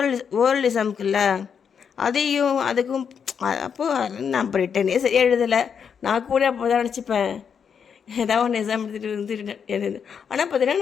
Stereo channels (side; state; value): right; quieter; 7.0 dB